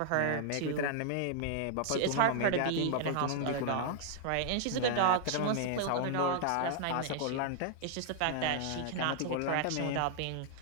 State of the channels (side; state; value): both; different; correlation -0.01